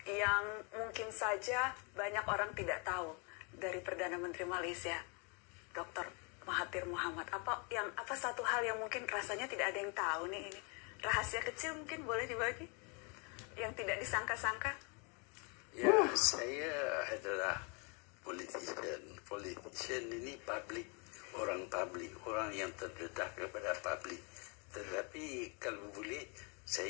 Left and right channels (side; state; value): right; quieter; 34.3 dB